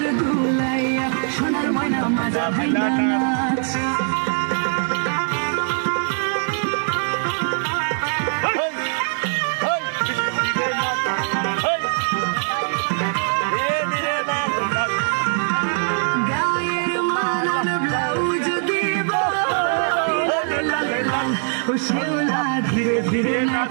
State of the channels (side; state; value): left; silent; digital silence